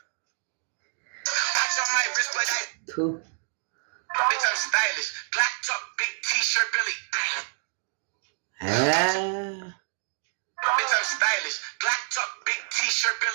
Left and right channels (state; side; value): silent; left; digital silence